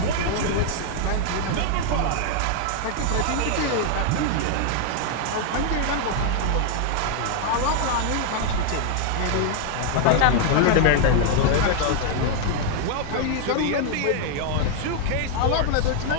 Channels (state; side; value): different; both; correlation 0.00